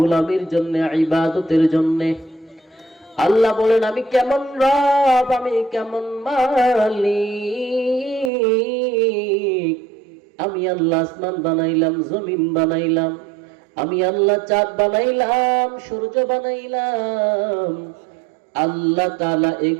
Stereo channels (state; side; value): drops out; left; at 8.3 s